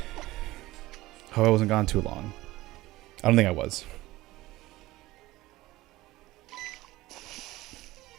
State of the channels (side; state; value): left; quieter; 18.0 dB